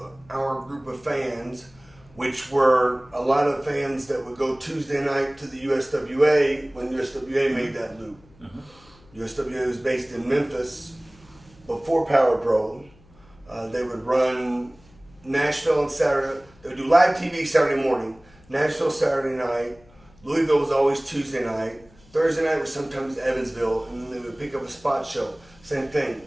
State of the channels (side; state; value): left; noise; hum, 27 dB below the sound